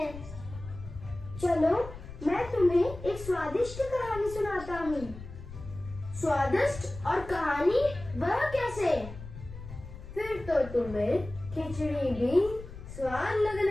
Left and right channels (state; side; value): noise; left; rumble, 13 dB below the sound